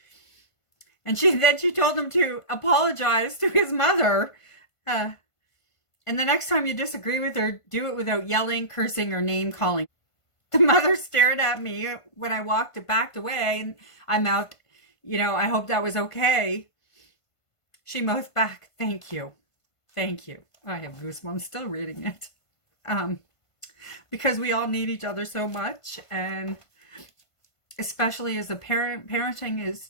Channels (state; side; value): late; right; 1.5 ms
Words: And then she told him to apologize to his mother. And the next time you disagree with her, do it without yelling, cursing, or name calling. The mother stared at me when I backed away, and I mouthed, I hope that was okay. She mouthed back, thank you. Thank you. I have goosebumps still reading it. Because we all need each other so much, and especially as a parent, parenting is